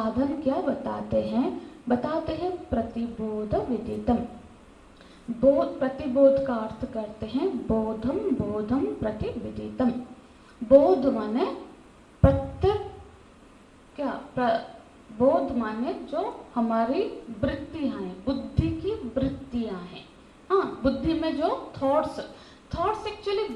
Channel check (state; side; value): identical; both; correlation 1.00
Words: क्या बताते हैं? बताते हैं प्रतिबोध विदितम। प्रतिबोध का अर्थ करते हैं बोधम, बोधम प्रतिविदितम। बोध माने प्रत्येक, बोध माने जो हमारी वृत्तियां हैं, बुद्धि की वृत्तियां हैं। हाँ, बुद्धि में जो थॉट्स एक्चुअली